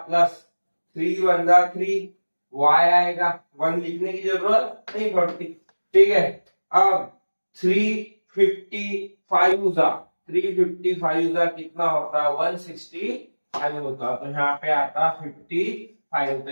प्लस 3 वन जा 3, y आएगा, 1 लिखने की जरूरत नहीं पड़ती। ठीक है, अब 355 जा 355 जा कितना होता है 165 होता, तो यहाँ पे आता 55। तो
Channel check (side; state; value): both; inverted; correlation -1.00